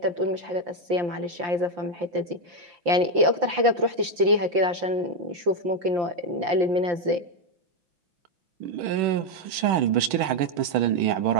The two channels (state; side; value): late; left; 5.8 ms